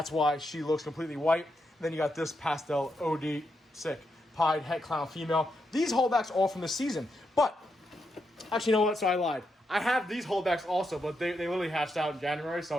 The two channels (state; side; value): normal; both; correlation 0.83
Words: why she looks completely white. And then you got this pastel OD sick Pied Het Clown female. These holdbacks all from this season. But, actually, you know what? So I lied. I have these holdbacks also, but they literally hatched out in January,